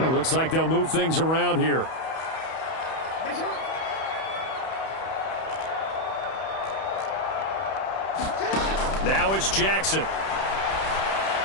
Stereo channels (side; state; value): right; late; 31 ms